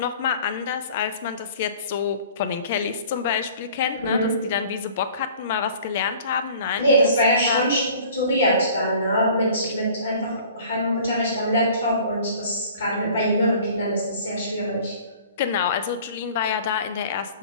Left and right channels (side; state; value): both; inverted; correlation -0.48